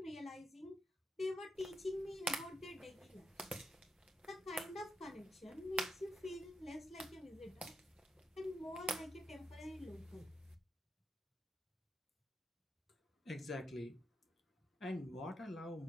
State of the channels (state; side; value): normal; both; correlation 0.84